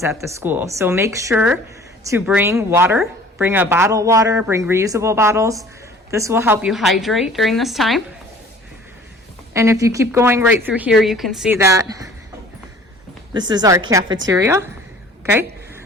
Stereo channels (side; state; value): both; normal; correlation 0.49